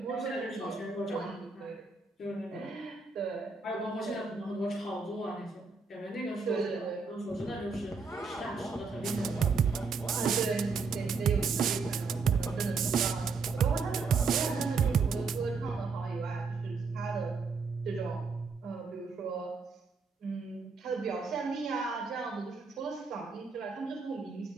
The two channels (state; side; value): quieter; left; 4.6 dB